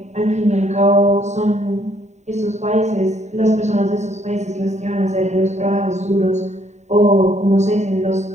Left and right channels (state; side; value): late; left; 0.34 ms